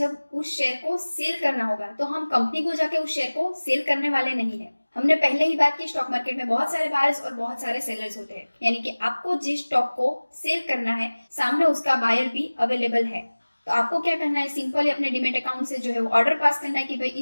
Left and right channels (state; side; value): inverted; both; correlation -1.00